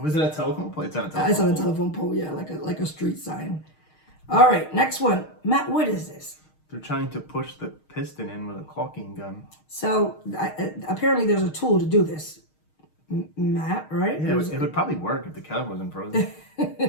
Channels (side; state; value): right; late; 6.4 ms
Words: it a telephone pole? It's on a telephone pole. It's on a telephone pole, yeah, like a street sign. All right, next one. Matt, what is this? They're trying to push the piston in with a caulking gun. So apparently there's a tool to do this. Matt, right? Yeah, it would probably work if the caliper wasn't frozen.